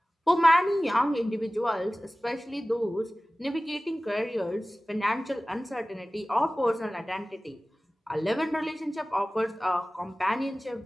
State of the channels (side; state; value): both; normal; correlation 0.97